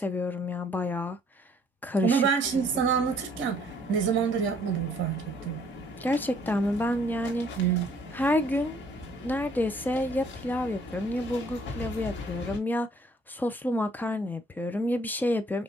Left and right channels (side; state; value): both; normal; correlation 0.61